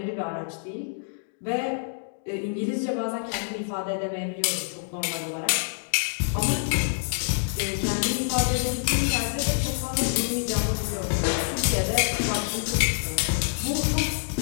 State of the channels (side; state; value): right; silent; digital silence